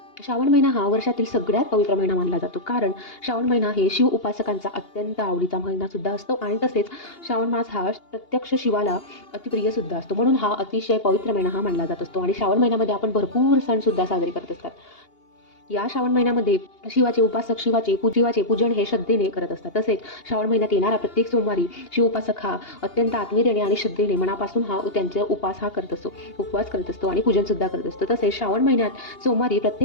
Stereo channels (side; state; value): right; late; 2.8 ms